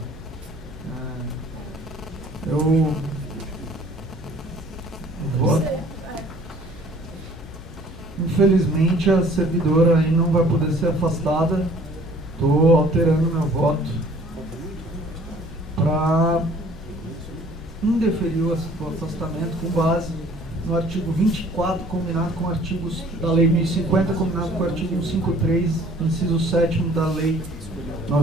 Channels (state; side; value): normal; both; correlation 0.54